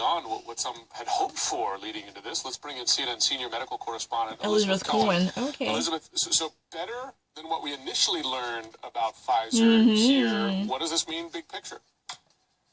what some had hoped for leading into this. Let's bring in CNN senior medical correspondent Elizabeth Cohen. Okay. Elizabeth, so better than what we initially learned about Pfizer here. What does this mean, big picture?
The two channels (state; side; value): identical; both; correlation 1.00